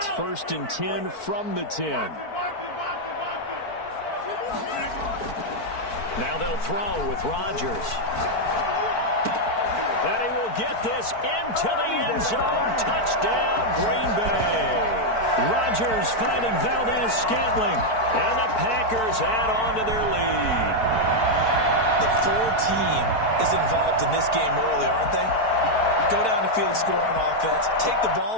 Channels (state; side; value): late; right; 4.5 ms